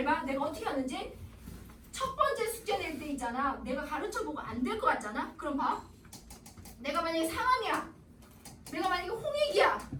봐. 내가 어떻게 하는지. 첫 번째 숙제 낼 때 있잖아. 내가 가르쳐보고 안 될 것 같잖아. 그럼 봐. 내가 만약에 상황이야. 내가 만약에 홍익이야.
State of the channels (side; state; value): both; identical; correlation 1.00